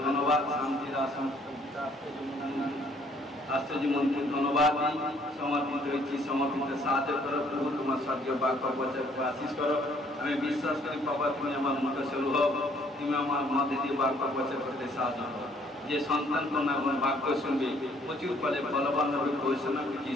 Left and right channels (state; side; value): normal; both; correlation 0.63